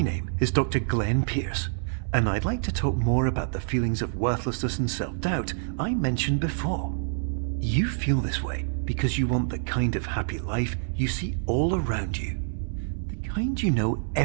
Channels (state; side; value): silent; left; 60 dB below the other